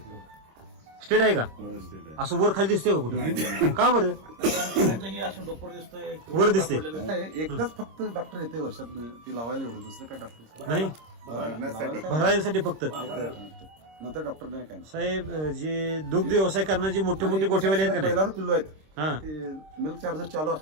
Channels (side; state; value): left; late; 26 ms